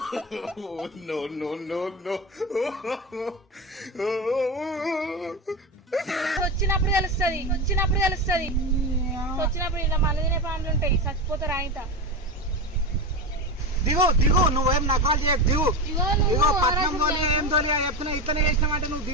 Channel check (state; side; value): normal; both; correlation 0.20